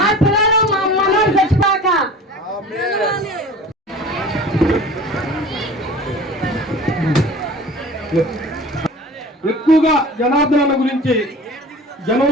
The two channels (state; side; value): normal; both; correlation 0.41